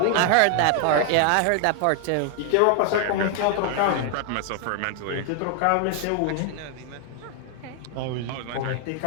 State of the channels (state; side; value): different; both; correlation 0.00